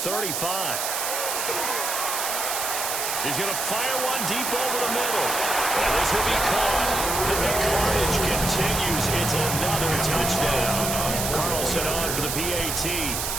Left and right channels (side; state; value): right; noise; hiss, 2 dB below the sound